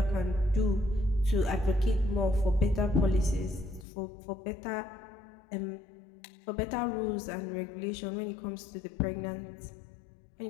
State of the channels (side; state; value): right; drops out; at 3.9 s